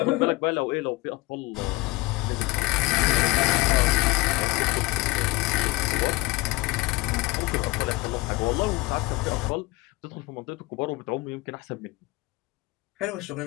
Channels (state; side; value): quieter; right; 21.7 dB